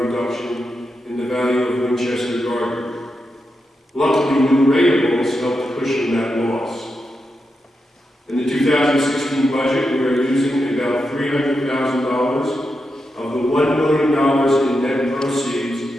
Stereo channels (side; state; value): both; normal; correlation 0.87